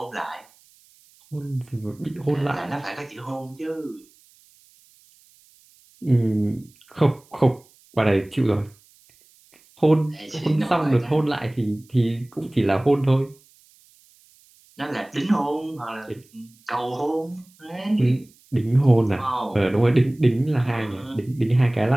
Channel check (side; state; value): right; noise; hiss, 30 dB below the sound